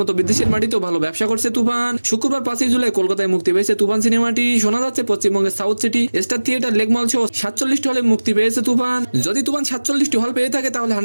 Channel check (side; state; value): both; inverted; correlation -1.00